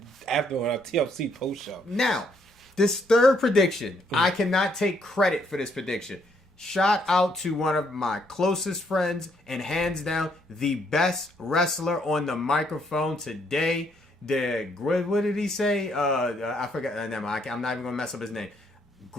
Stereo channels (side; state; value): both; normal; correlation 0.71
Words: after on our TLC post show. Now, this third prediction, I cannot take credit for this prediction. Shout out to one of my closest friends and hands down the best wrestler on the microphone today. What did he say? I forgot. Never mind. I'm not even going to mess up his name.